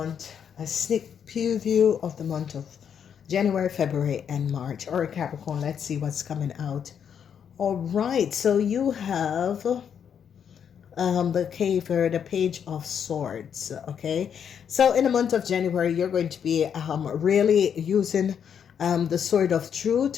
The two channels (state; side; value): quieter; right; 7.9 dB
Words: a sneak preview of the month of January, February, and March. All right, Capricorn, let's see what's coming out. All right, so you have the Page of Swords. Okay, so in the month of January, you're going to be really using the Sword of